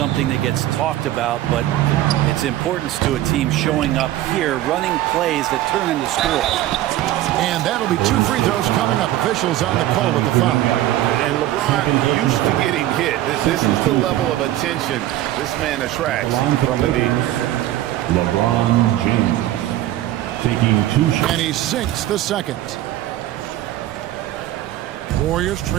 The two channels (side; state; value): left; quieter; 14.2 dB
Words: that gets talked about, but its importance to a team showing up here, running plays that turn into scores. And that'll be 2 free throws coming up. Officials on the call with the foul. And LeBron used to getting hit. This is the level of attention this man attracts from the defense. LeBron James. Taking 2 shots. And he sinks the second. Warriors